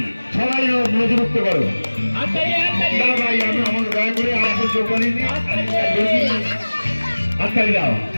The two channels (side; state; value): both; inverted; correlation -1.00